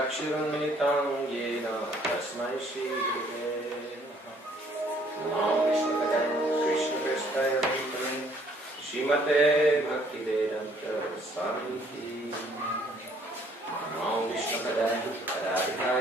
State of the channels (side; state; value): both; normal; correlation 0.62